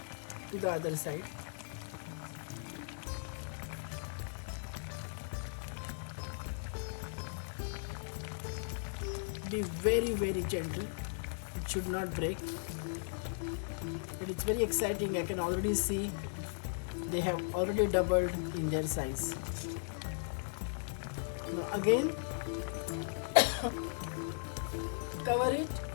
to the other side. Be very gentle. It should not break. But it's very exciting. I can already see they have already doubled in their size. Now again, cover it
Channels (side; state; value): right; silent; digital silence